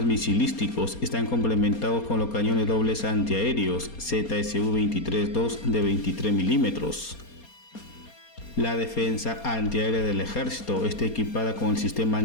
misilísticos están complementados con los cañones dobles antiaéreos ZSU-23-2 de 23 milímetros. La defensa antiaérea del ejército está equipada con el sistema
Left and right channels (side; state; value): right; late; 4.3 ms